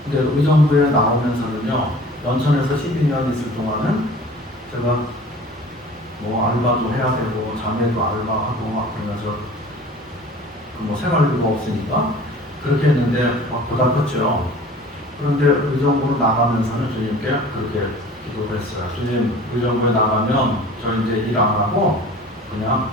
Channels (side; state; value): both; normal; correlation 0.44